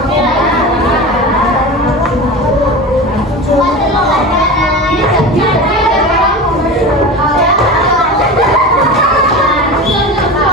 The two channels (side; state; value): both; normal; correlation 0.29